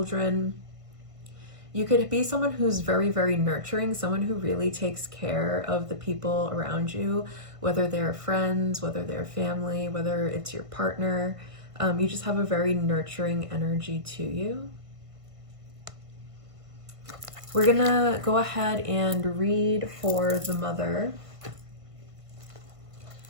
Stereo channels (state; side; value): late; left; 1.5 ms